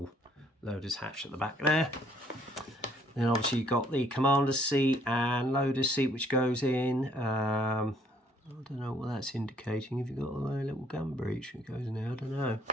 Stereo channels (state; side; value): normal; both; correlation 0.64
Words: loader's hatch at the back there. Then obviously you've got the commander's seat and loader's seat which goes in. I don't know what that's indicating. If you've got a little gun breech that goes in there, I don't know.